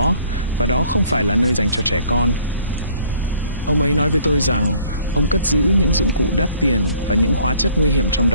và đó không phải là nơi dành cho trẻ con. Ông ấy nói với tôi rằng ông cất giữ những dụng cụ đắt tiền và những hóa chất nguy hiểm trong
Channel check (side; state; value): both; inverted; correlation -0.57